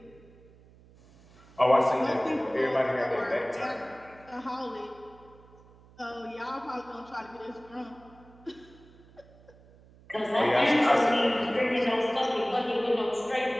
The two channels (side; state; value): right; noise; hum, 25 dB below the sound